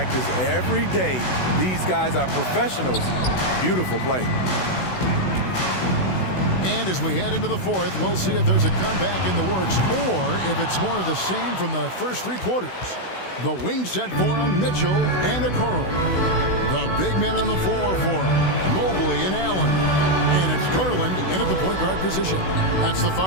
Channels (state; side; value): late; right; 16 ms